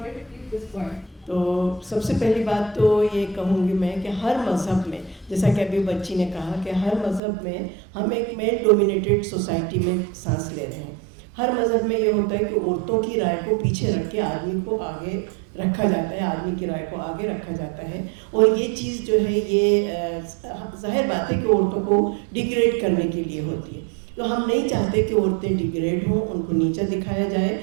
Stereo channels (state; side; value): drops out; left; at 7.2 s